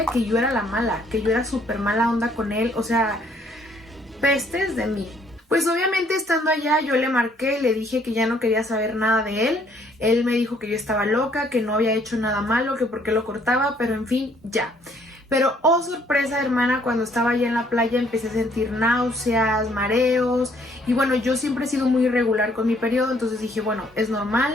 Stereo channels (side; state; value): both; normal; correlation 0.64